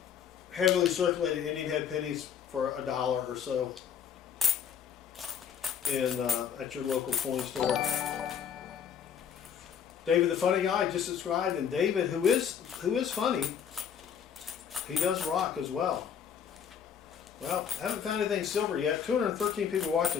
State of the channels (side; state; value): right; quieter; 8.0 dB